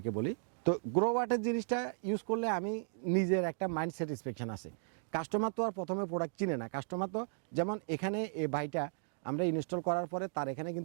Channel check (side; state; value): left; silent; digital silence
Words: বলি, তো গ্রোওয়াটের জিনিসটা ইউজ করলে আমি নিজের একটা মাইন্ড স্যাটিসফ্যাকশন আছে। কাস্টমার তো আর প্রথমে প্রোডাক্ট চিনে না, কাস্টমার তো যেমন এখানে এই ভাইটা আমরা ইনস্টল করার পরে তার এখানে